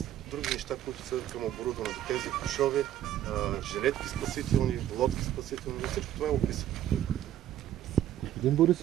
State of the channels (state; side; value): quieter; left; 11.6 dB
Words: други неща, които са към оборудването. Тези кошове, жилетки спасителни, лодки спасителни, всичко това е описано. Господин